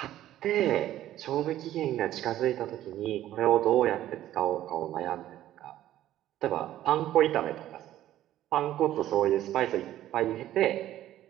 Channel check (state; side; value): quieter; left; 13.2 dB